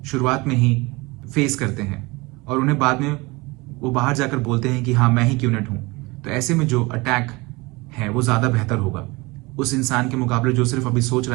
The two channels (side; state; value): left; quieter; 24.1 dB